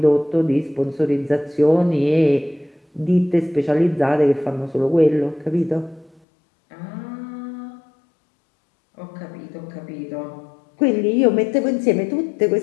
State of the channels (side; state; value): right; drops out; at 6.2 s